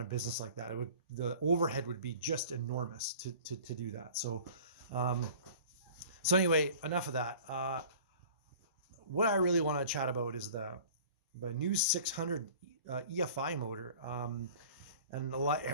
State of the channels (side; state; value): both; inverted; correlation -0.44